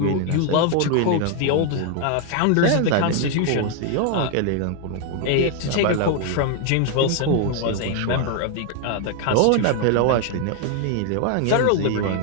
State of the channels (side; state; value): both; different; correlation 0.00